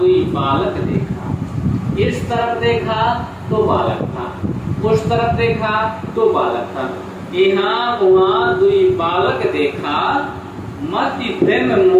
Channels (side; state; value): both; identical; correlation 1.00